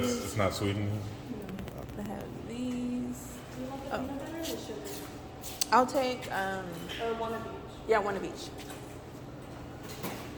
not Sweden? They have these. Oh. I'll take, one of each. Yeah, one of each.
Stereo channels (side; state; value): both; identical; correlation 1.00